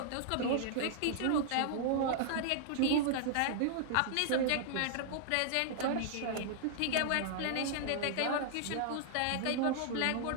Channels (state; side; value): different; both; correlation -0.01